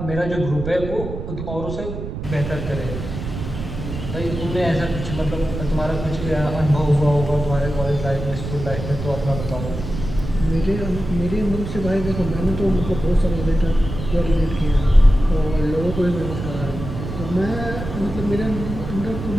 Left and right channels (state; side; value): noise; right; rumble, 7 dB below the sound